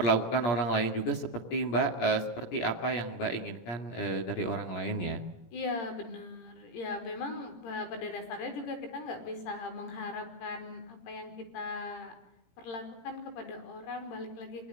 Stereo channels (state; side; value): late; right; 17 ms